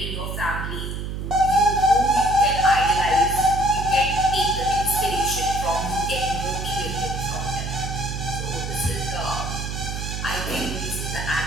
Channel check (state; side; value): noise; right; hum, 5 dB below the sound